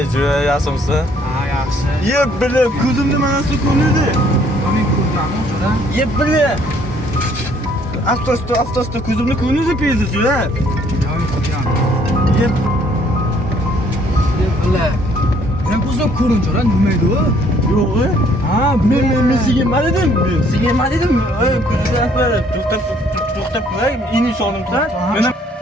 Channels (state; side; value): normal; both; correlation 0.63